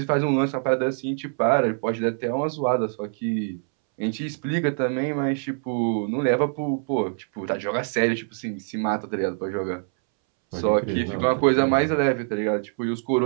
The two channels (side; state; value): left; silent; 62 dB below the other